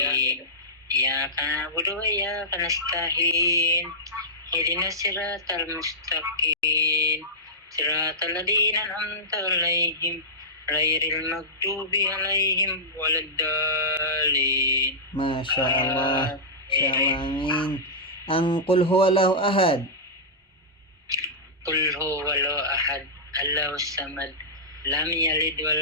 Iyyaka na'budu wa iyyaka nasta'in. Ihdinas siratal mustaqim. Siratal ladzina an'amta 'alaihim ghairil maghdubi 'alaihim waladdallin. Masya Allah. Masya Allah. Amin. Ang Qul huwallahu ahad. Qul huwallahu ahad, Allahus samad, lam yalid wa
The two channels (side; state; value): both; normal; correlation -0.14